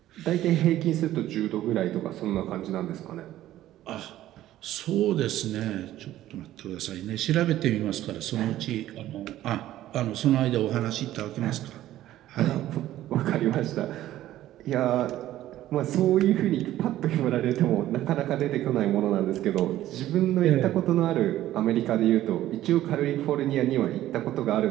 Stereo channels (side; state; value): left; quieter; 13.8 dB